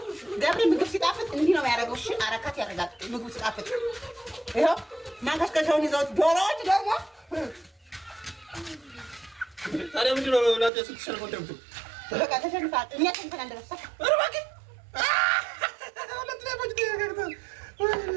ገብሬ ምግብ ሲጣፍጥ እንዲህ ነው የሚያደርገው። እሺ አረካት ያደርጋል ምግቡ ሲጣፍጥ። ይኸው ማንከሽከሻውን ይዘውት ዶሮዎች ደግሞ ታዲያ ምንድን ነው እናንተ ስትሸንፉ እንደምትሉ? በቃ ተሸንፏል። እኛ ተንተን እንደረሳ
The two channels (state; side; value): drops out; left; at 10.7 s